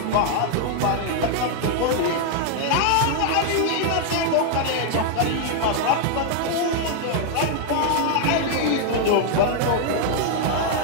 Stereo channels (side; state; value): both; different; correlation 0.00